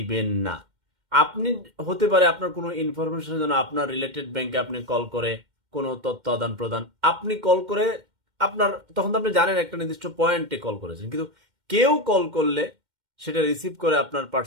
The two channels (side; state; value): left; late; 2.1 ms